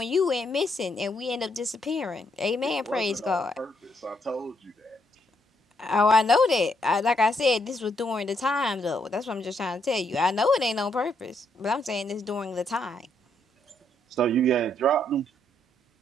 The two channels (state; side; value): normal; both; correlation 0.74